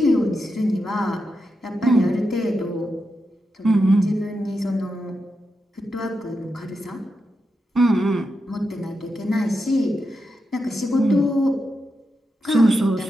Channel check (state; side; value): normal; both; correlation 0.87